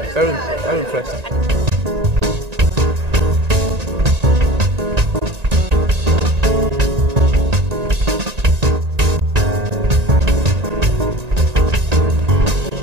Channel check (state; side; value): late; left; 1.9 ms